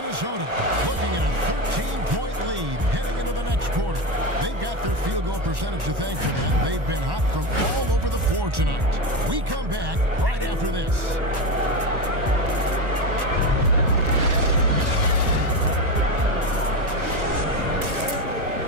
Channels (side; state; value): left; late; 1.2 ms